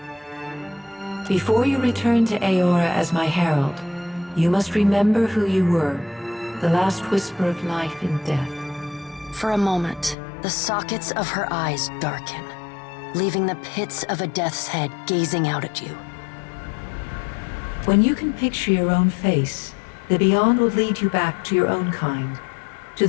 Before you return to Eora as my herald, you must remember who you were, the last whisper of life in death. For a moment, the sockets of her eyes darken, leaving the pits of a death's head gazing out at you. When you can picture your own face, the Beyond will lead you back to your own kind, to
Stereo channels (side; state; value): right; drops out; at 10.2 s